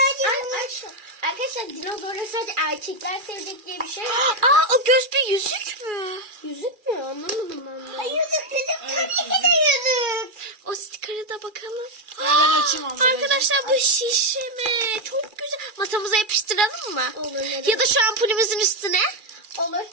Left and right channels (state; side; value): late; left; 2.4 ms